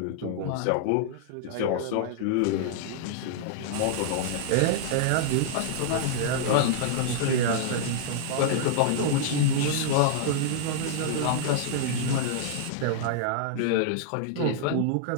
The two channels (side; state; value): both; different; correlation -0.01